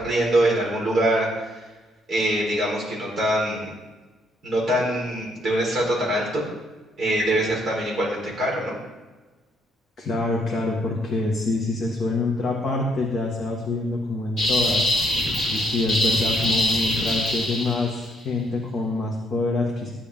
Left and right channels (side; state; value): both; normal; correlation 0.71